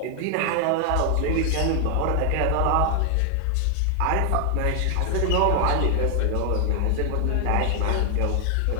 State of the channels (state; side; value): different; both; correlation 0.00